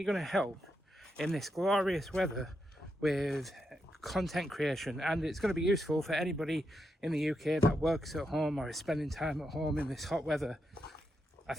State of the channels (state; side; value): normal; both; correlation 0.84